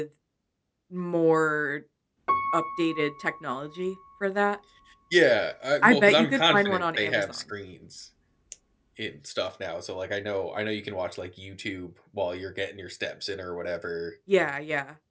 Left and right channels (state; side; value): identical; both; correlation 1.00